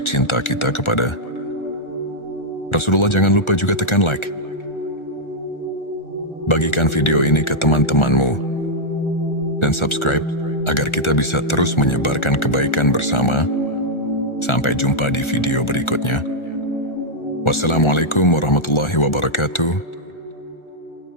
cinta kita kepada Rasulullah. Jangan lupa juga tekan like. Bagikan video ini ke teman-temanmu dan subscribe agar kita bisa terus menyebarkan kebaikan bersama. Sampai jumpa di video berikutnya. Wassalamualaikum warahmatullahi wabarakatuh.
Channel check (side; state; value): right; late; 1.4 ms